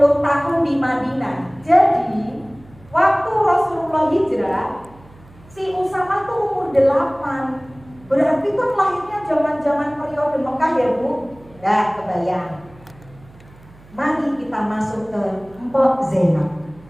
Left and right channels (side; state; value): right; noise; hum, 24 dB below the sound